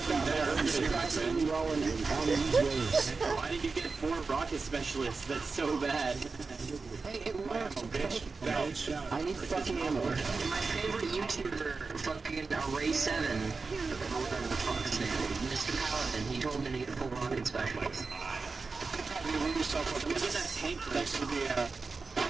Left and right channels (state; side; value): quieter; left; 4.3 dB